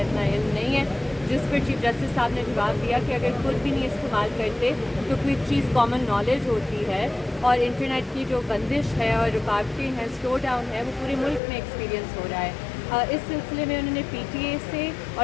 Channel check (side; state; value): right; drops out; at 11.4 s